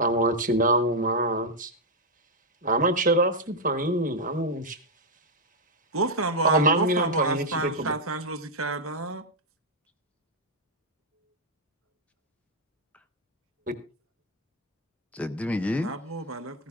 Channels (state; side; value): normal; both; correlation -0.02